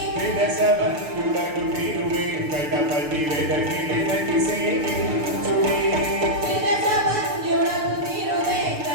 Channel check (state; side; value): late; left; 6.6 ms